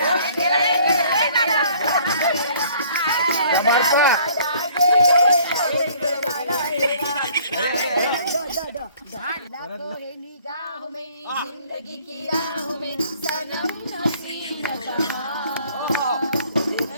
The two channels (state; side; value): inverted; both; correlation -0.57